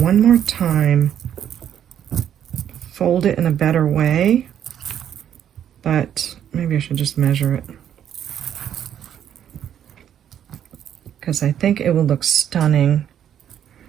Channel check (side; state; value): left; quieter; 9.7 dB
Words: more time fold it in a better way, but maybe I should just measure it because I think it will look stunning